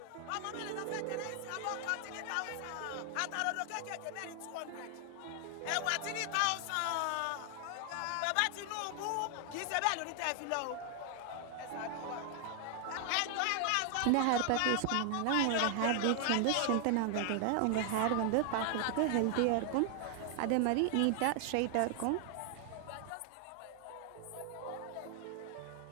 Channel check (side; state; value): both; different; correlation 0.00